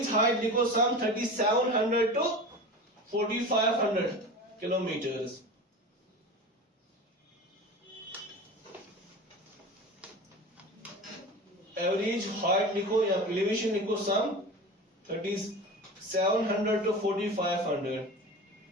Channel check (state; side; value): normal; both; correlation 0.32